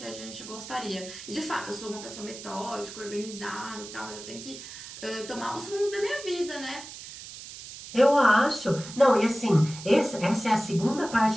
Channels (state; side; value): noise; right; hiss, 13 dB below the sound